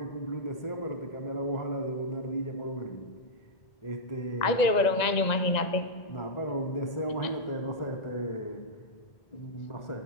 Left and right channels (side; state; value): right; late; 1.9 ms